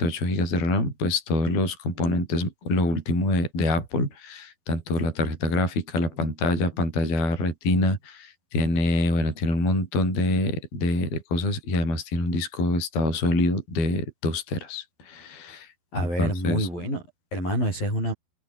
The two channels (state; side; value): late; right; 12 ms